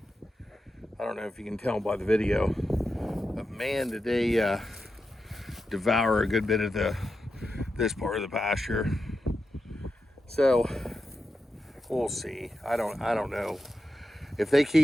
I don't know if you can tell by the video, but man, did they devour a good bit of this part of the pasture. So we'll see. I don't know if they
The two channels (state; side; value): normal; both; correlation 0.89